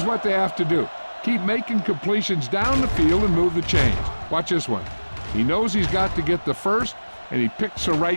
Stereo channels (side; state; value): both; inverted; correlation -1.00